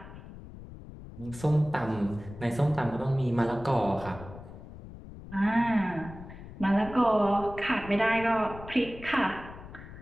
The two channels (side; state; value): left; noise; rumble, 15 dB below the sound